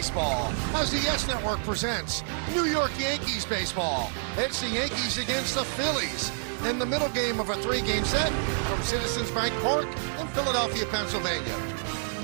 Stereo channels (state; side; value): silent; left; digital silence